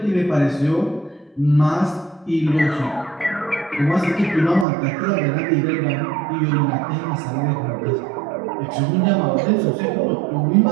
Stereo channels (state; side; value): drops out; left; at 4.7 s